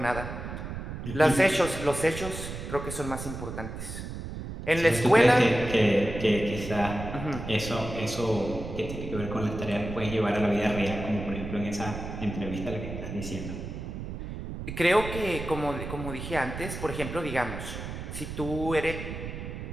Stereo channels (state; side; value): noise; right; rumble, 8 dB below the sound